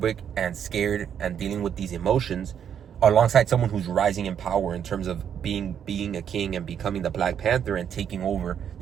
and scared and dealing with these emotions, alongside someone who's rising in power in terms of being a king and becoming the Black Panther and taking over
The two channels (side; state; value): left; quieter; 8.6 dB